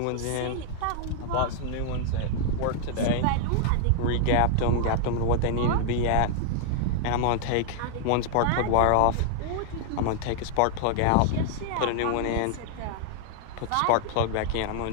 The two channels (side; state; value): both; different; correlation -0.01